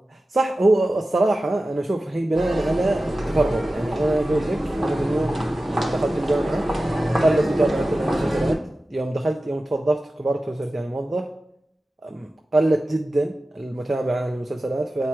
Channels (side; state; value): both; normal; correlation 0.95